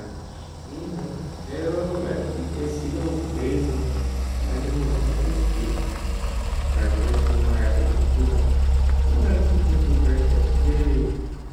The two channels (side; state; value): both; identical; correlation 1.00